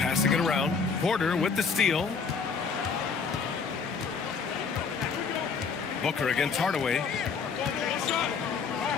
it around. Porter with the steal. Booker against Hardaway.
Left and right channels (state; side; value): quieter; right; 5.4 dB